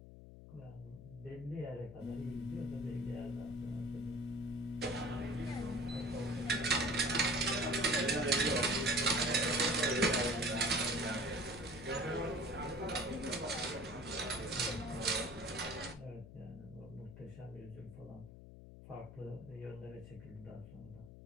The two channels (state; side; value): noise; left; hum, 15 dB below the sound